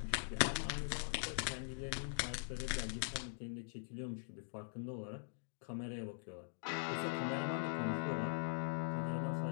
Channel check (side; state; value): right; silent; digital silence